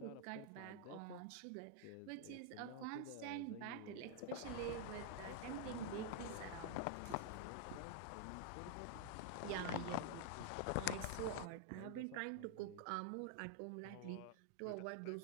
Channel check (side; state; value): both; different; correlation -0.01